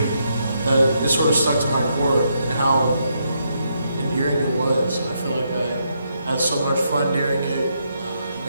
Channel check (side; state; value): both; inverted; correlation -0.78